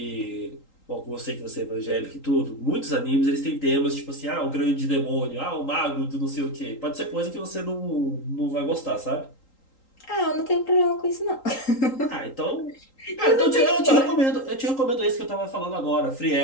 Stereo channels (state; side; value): late; right; 3.8 ms